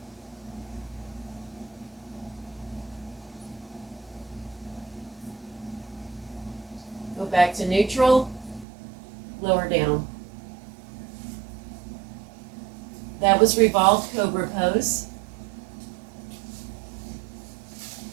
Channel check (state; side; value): drops out; left; at 8.7 s